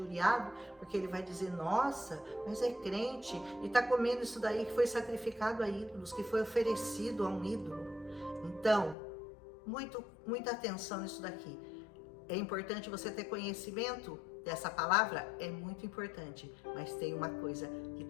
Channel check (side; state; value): right; drops out; at 9.0 s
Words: porque ele vai dizer, nossa, mas é crente e está comendo isso daí que foi sacrificado a ídolos, que foi oferecido a um ídolo. Então, muita atenção nisso daqui. É importante você ter conhecimento dessa palavra, é muito importante, mas tem uma coisa que